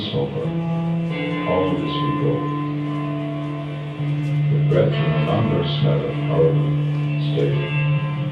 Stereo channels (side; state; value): both; identical; correlation 1.00